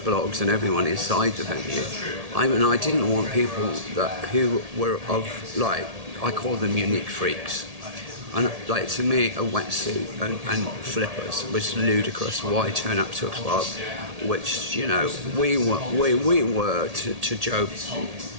and everyone inside the venue. I didn't want people who were of, like, I call them unique freaks. And like, to me, a wetsuit and flippers was ludicrous. Why turn up to a club, which, you know, we were to Joe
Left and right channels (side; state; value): left; late; 1.8 ms